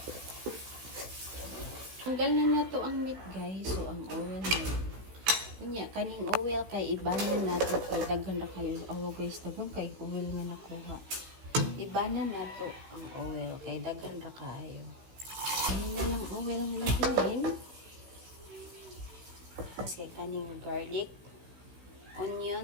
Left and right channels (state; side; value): late; left; 16 ms